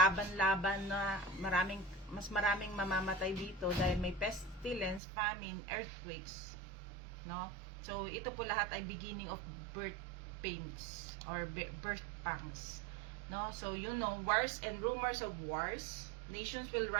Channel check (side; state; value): left; drops out; at 5.0 s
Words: na mas maraming mamamatay dito dahil may pestilence, famine, earthquakes, no? So ito po lahat ay beginning of birth pains or birth pangs, no? So wars and rumors of wars, nations will